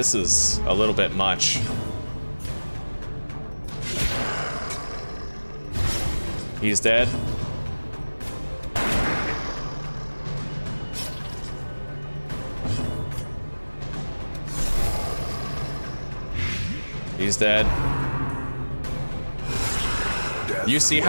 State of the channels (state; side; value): inverted; both; correlation -1.00